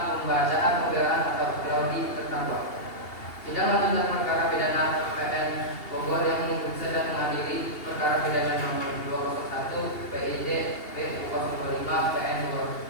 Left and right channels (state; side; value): late; right; 2.8 ms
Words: pembelaan atau klaudi terdakwa. Sidang lanjutan perkara pidana PN Bogor yang memeriksa dan mengadili perkara pidana nomor 201 PID P025 PN